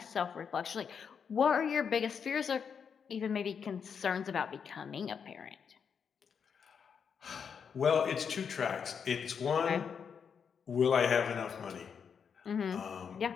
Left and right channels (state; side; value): quieter; right; 6.8 dB